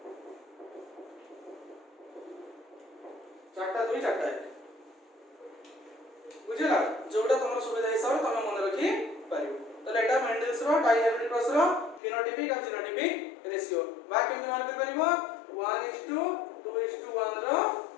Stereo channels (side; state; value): right; drops out; at 12.0 s